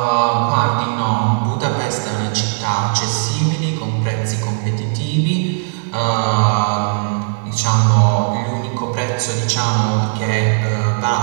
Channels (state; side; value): silent; left; digital silence